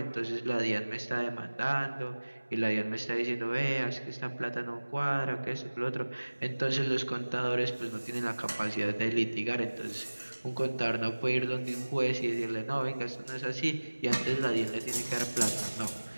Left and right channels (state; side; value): inverted; both; correlation -1.00